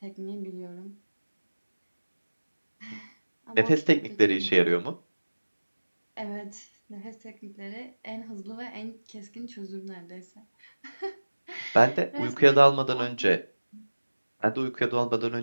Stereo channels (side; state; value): both; inverted; correlation -1.00